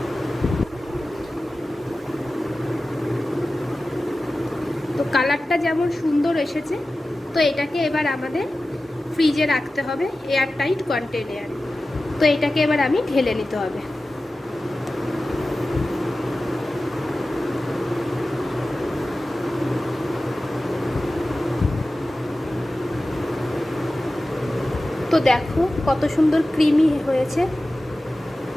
তো কালারটা যেমন সুন্দর এসেছে, তো এটাকে এবার আমাদের ফ্রিজে রাখতে হবে এয়ার টাইট কন্টেনারে। তো এটাকে এবার আমি ঢেলে নিতে হবে। তো দেখো কত সুন্দর ক্রিমি হয়েছে।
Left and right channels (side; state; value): both; normal; correlation 0.95